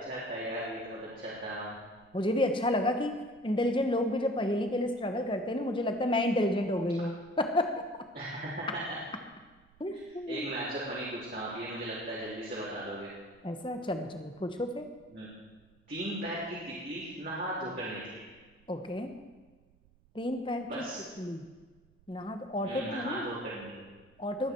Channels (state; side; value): noise; right; rumble, 30 dB below the sound